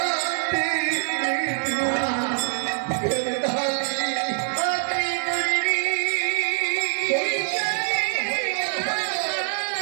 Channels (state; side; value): silent; left; 58 dB below the other